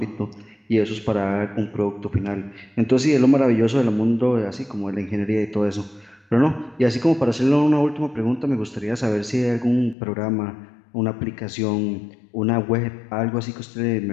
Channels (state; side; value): drops out; right; at 10.0 s